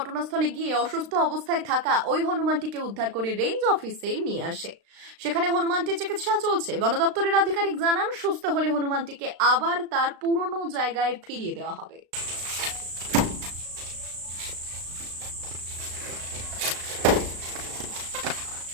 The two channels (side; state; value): left; late; 36 ms